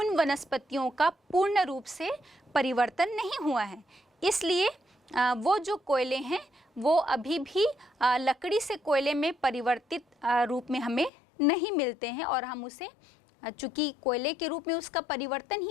वनस्पतियों का पूर्ण रूप से परिवर्तन नहीं हुआ है। इसलिए वो जो कोयले हैं वो अभी भी लकड़ी से कोयले में परिवर्तित रूप में हमें नहीं मिलते हैं, और हम उसे, चूँकि कोयले के रूप में उसका परिवर्तन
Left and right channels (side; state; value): right; drops out; at 11.1 s